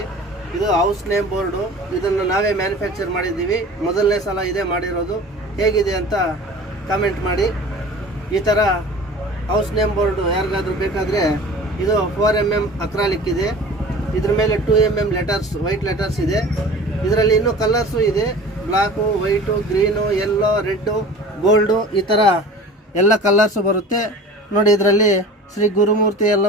ಇದು ಹೌಸ್ ನೇಮ್ ಬೋರ್ಡು. ಇದನ್ನು ನಾವೇ ಮ್ಯಾನುಫ್ಯಾಕ್ಚರ್ ಮಾಡಿದ್ದೀವಿ. ಮೊದಲನೇ ಸಲ ಇದೇ ಮಾಡಿರೋದು. ಹೇಗಿದೆ ಅಂತ ಕಾಮೆಂಟ್ ಮಾಡಿ. ಈ ಥರ ಹೌಸ್ ನೇಮ್ ಬೋರ್ಡು ಯಾರಿಗಾದ್ರೂ ಬೇಕಾದರೆ ಇದು 4mm ಅಕ್ರಾಲಿಕ್ ಇದೆ. ಇದ್ರ ಮೇಲೆ 2mm ಲೆಟರ್ಸ್, ವೈಟ್ ಲೆಟರ್ಸ್ ಇದೆ. ಇದರಲ್ಲಿ ಇನ್ನೂ ಕಲರ್ಸು ಇದೆ. Block, white, green, yellow, red, gold, ಈ ಥರ ಎಲ್ಲ ಕಲರ್ಸು ಬರುತ್ತೆ ನೋಡಿ. ಇದರಲ್ಲಿ ಶ್ರೀ ಗುರುಮೂರ್ತಿ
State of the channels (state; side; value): normal; both; correlation 0.41